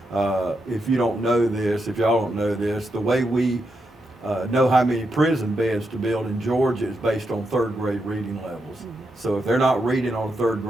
if you don't know this, if y'all don't know this, the way we know how many prison beds to build in Georgia is based on third grade reading levels. So if they're not reading on a third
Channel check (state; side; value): normal; both; correlation 0.84